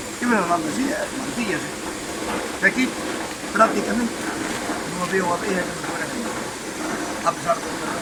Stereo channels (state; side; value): identical; both; correlation 1.00